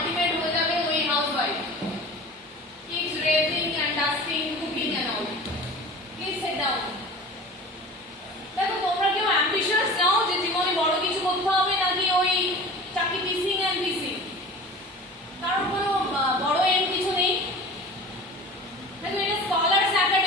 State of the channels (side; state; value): both; normal; correlation 0.38